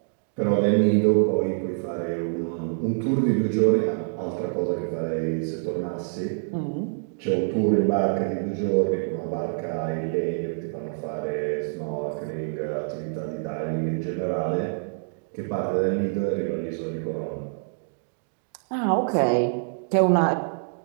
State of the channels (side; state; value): left; silent; digital silence